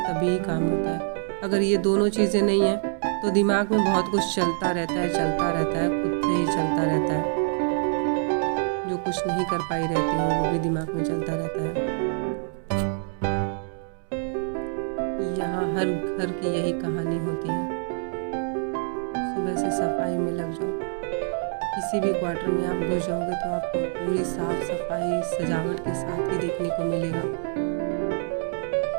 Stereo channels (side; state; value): left; silent; 61 dB below the other